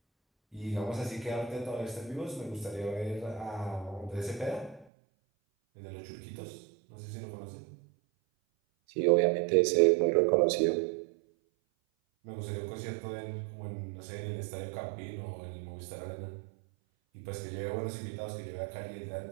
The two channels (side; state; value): left; drops out; at 4.9 s